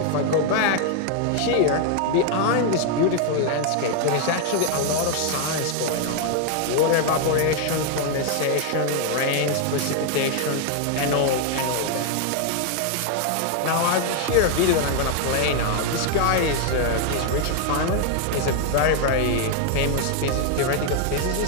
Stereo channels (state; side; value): different; both; correlation 0.00